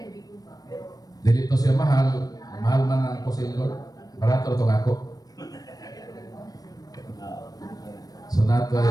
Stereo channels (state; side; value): late; right; 0.18 ms